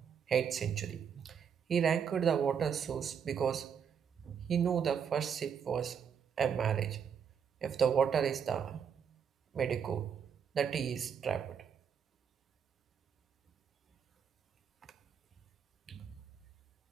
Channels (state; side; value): quieter; left; 7.3 dB